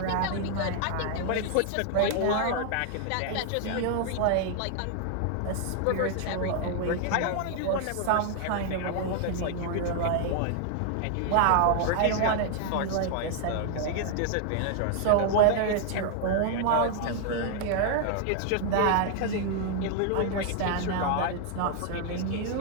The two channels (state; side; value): different; both; correlation 0.00